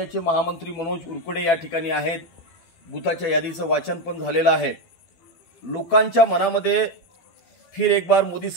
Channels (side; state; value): right; late; 12 ms